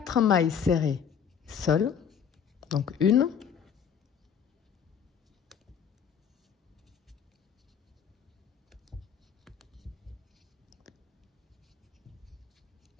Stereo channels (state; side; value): quieter; right; 7.5 dB